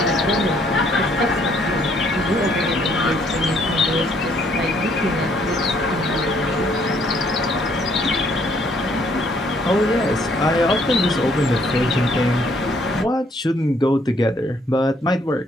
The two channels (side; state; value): both; normal; correlation 0.66